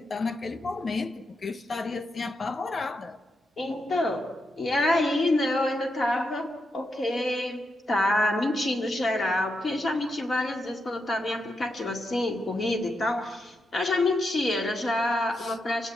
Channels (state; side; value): normal; both; correlation 0.84